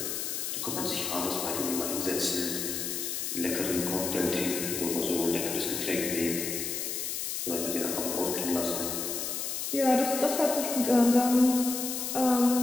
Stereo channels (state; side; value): noise; left; hiss, 3 dB below the sound